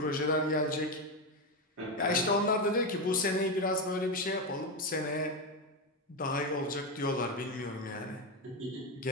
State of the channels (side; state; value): both; normal; correlation 0.11